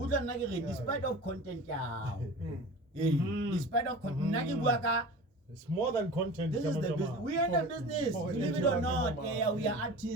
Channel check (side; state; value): both; normal; correlation 0.37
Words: of content, yeah. Mm. Despite of content, It's more than content. this is the Jama business. Jama. We are in the business. For Believe it or Jama not, Jama. yeah, we are